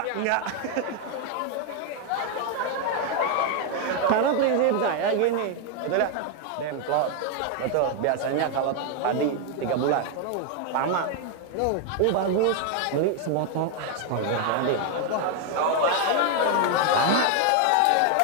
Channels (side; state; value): both; different; correlation 0.01